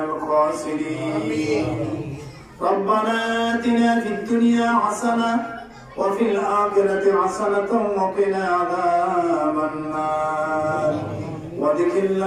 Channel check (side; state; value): both; identical; correlation 1.00